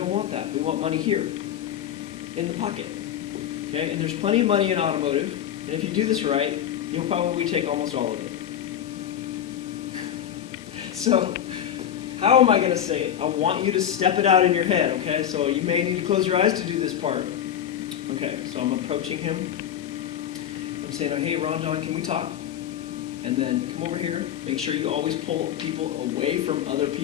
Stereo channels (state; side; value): quieter; right; 10.1 dB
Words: want that. We want money here, in the pocket. Okay? And there's plenty of money in automotive, and if you do this right, you'll probably take almost all of it. So, how am I going to say it? I want you to step it out in your head, okay? So you may need to close your eyes to do this part. Okay, so I'm approaching him. I'm saying, hey, Ron John, can we talk? And then come over here. Make sure you always pull people away from other